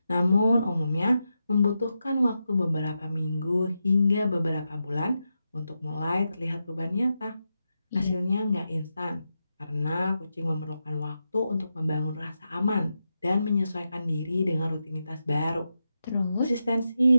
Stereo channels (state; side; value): inverted; both; correlation -0.88